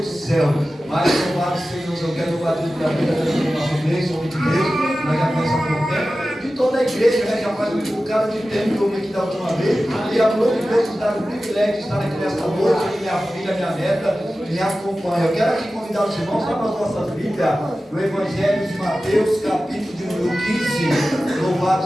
do céu. Mas louvado Senhor, eu quero louvar a Deus pela vida da nossa igreja, homem de Deus, nós já conhecemos há pouco tempo, de toda a igreja, já faz um bocado de tempo que eu vim aqui da última vez, e a glória de Deus nos dá o privilégio de estar aqui nesta noite, e minha filha, minha neta, me acompanha. Eu quero aqui convidar os irmãos para as nossas Bíblias, no Evangelho de Mateus, capítulo de número 15, louvado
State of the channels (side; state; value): both; normal; correlation 0.95